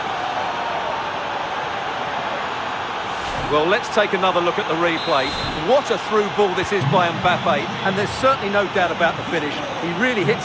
Well, let's take another look at the replay. What a through ball this is by Mbappe, and there's certainly no doubt about the finish. He really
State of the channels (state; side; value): identical; both; correlation 1.00